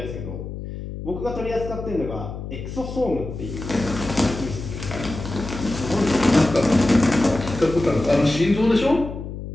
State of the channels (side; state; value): left; noise; hum, 9 dB below the sound